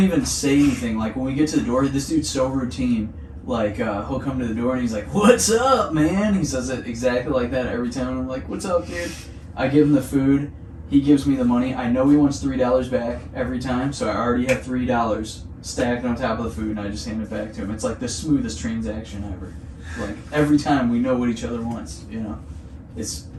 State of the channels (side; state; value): both; identical; correlation 1.00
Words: even say anything. Like when we get to the door, this dude's so routine. Like he'll come to the door and he's like, "What's up, man?" He says it exactly like that every time. I'm like, "What's up, dude?" I give him the food. He gives me the money. I know he wants $3 back every time, so I already have $3 stacked on top of the food, and I just hand it back to him. It's like the smoothest transaction ever. Like every time we know what each other wants. You know, it's